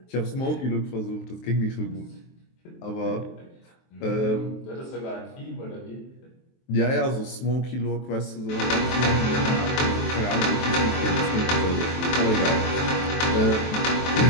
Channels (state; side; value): late; right; 23 ms